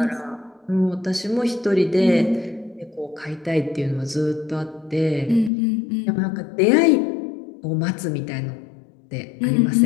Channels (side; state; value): right; drops out; at 5.5 s